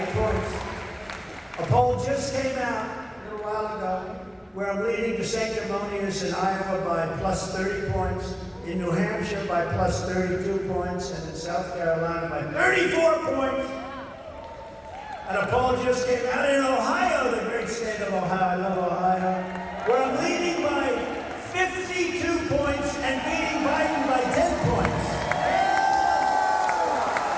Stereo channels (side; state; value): both; identical; correlation 1.00